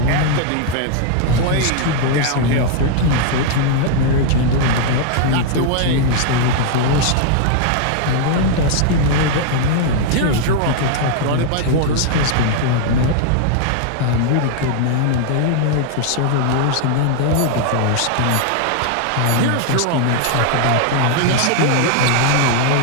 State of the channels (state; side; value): different; both; correlation 0.00